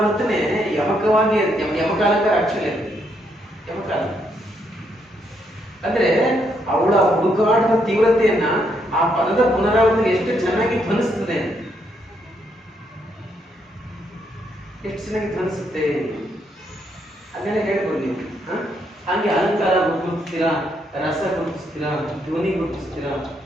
ಯಮಕವಾಗಿ ಯಮಕಾಲಂಕಾರ. ಆಕ್ಚುಲಿ ಯಮಕಾಲ ಅಂದ್ರೆ ಅವಳ ಹುಡುಕಾಟದ ತೀವ್ರತೆಯನ್ನ ಆ ಪದದ ಪುನರಾವರ್ತನೆ ಎಷ್ಟು ಚೆನ್ನಾಗಿ ಧ್ವನಿಸ್ತದೆ, ಎಷ್ಟು ಚೆನ್ನಾಗಿ ಧ್ವನಿಸುತ್ತೆ ಅದನ್ನೆಲ್ಲ ಹೇಳ್ಬೋದು ನೀವು. ಹಾಗೆ ಅಲಂಕಾರ ಗುರುತಿಸ್ತೀರಾ, ರಸ ಗುರುತಿಸ್ತೀರಾ, ಧ್ವನಿ ಗುರುತಿಸ್ತೀರಾ,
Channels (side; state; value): both; normal; correlation 0.75